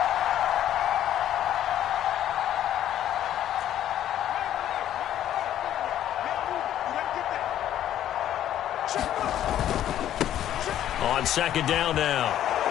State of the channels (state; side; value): quieter; right; 11.5 dB